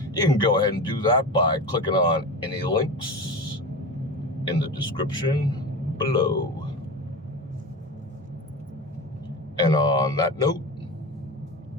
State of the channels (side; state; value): both; normal; correlation 0.27